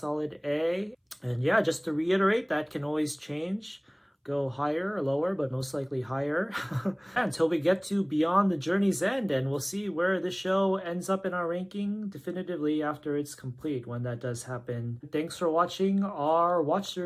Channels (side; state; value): both; identical; correlation 1.00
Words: A. And yeah, just to reiterate, that can always change. Go higher or lower, but most likely higher until we get to Beyond the Journey's End, and we'll see where the show ends up in our ranking definitively after it's complete, when that does happen. Thanks for watching our watch